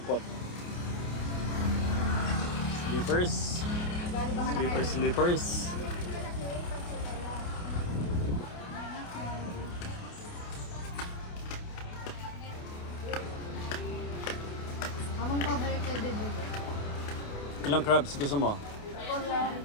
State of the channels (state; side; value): late; right; 28 ms